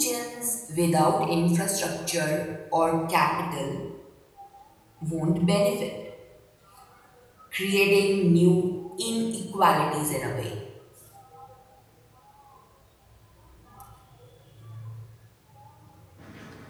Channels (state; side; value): identical; both; correlation 1.00